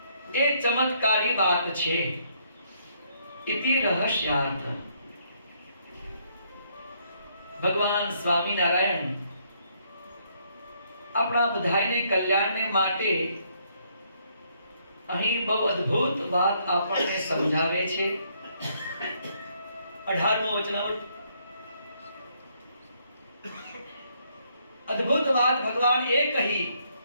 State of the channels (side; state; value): both; inverted; correlation -0.70